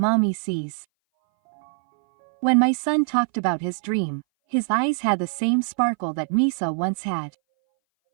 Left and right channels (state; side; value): silent; left; 60 dB below the other